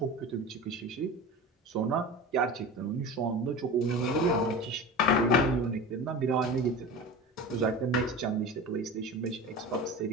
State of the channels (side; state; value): both; normal; correlation 0.32